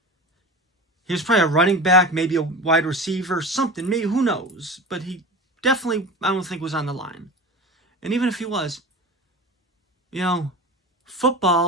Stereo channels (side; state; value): both; normal; correlation 0.31